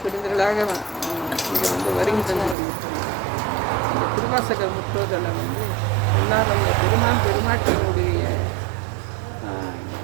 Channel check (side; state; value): left; drops out; at 2.6 s